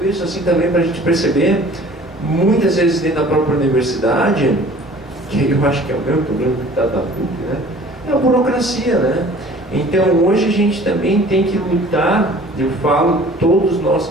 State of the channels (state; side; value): normal; both; correlation 0.49